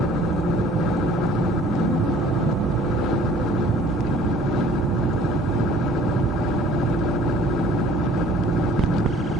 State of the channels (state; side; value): normal; both; correlation 0.53